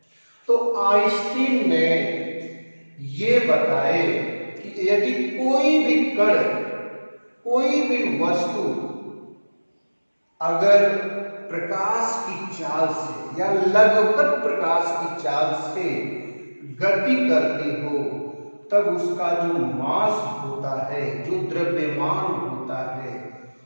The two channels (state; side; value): inverted; both; correlation -1.00